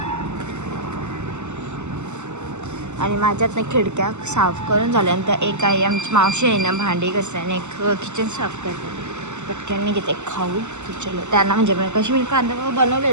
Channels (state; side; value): late; left; 0.83 ms